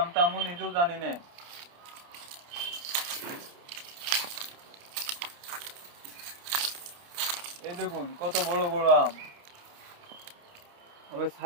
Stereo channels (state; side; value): late; left; 29 ms